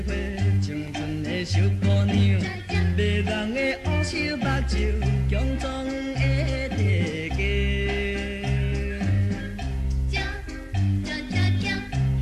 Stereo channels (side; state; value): both; identical; correlation 1.00